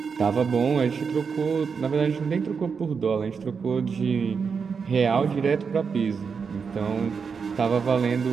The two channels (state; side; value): quieter; left; 5.8 dB